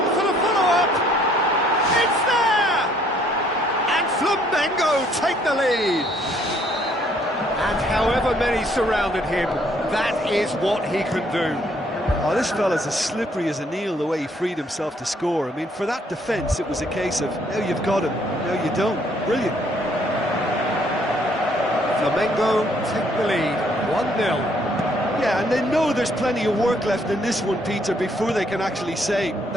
for the follow-up! It's there! And Flamengo take the lead! And however many surrounded him, that is what he can do. Oh, this fella's as slippery as an eel, the way he freed himself to score. I mean, for that defence, it was a case of, now you've got him, now you don't. Brilliant. Flamengo take the lead, 1-0. Yeah, and they know there's plenty of work left in this one, Peter, before they can actually say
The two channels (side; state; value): both; normal; correlation 0.65